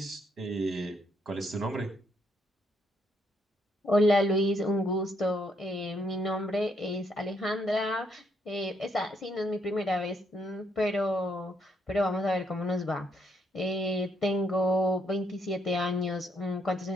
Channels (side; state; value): both; normal; correlation 0.73